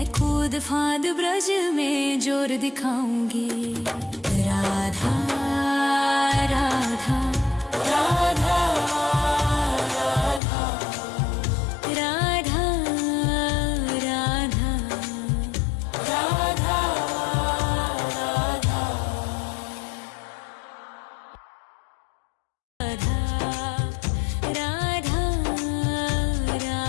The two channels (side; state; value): right; drops out; at 10.4 s